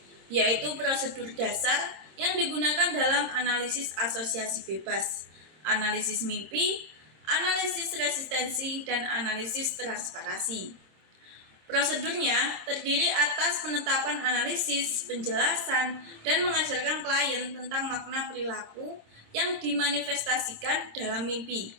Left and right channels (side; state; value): left; late; 26 ms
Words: yaitu prosedur dasar yang digunakan dalam analisis asosiasi bebas, analisis mimpi, analisis resistensi, dan analisis transparasi. Prosedurnya terdiri atas penetapan analisis, penjelasan, dan mengajarkan klien tentang makna perilaku yang dimanifestasikan dalam mimpi,